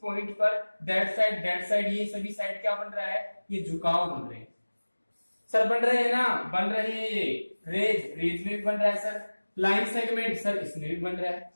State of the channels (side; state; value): both; inverted; correlation -1.00